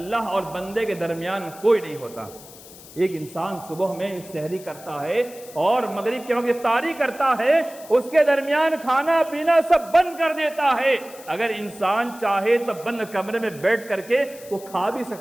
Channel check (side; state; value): left; noise; hiss, 19 dB below the sound